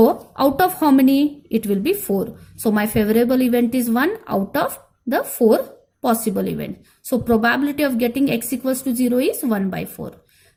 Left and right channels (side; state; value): both; identical; correlation 1.00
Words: out of how many? It will be 4. So my favorable event is 1 out of the 4 possible events. So probability of getting x equals to 0 is 1 by 4.